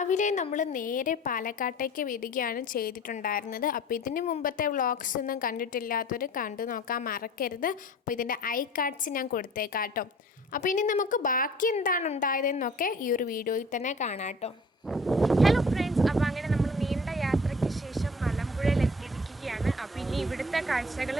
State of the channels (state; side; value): normal; both; correlation 0.47